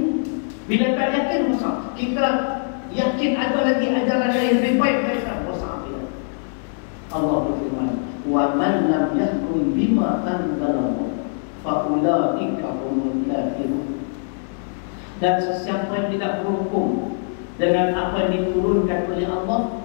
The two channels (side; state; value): right; silent; 64 dB below the other